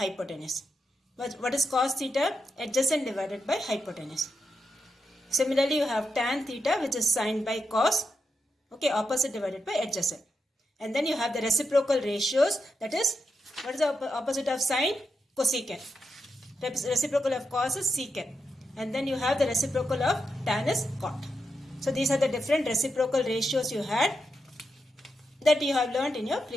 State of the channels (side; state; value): both; normal; correlation 0.85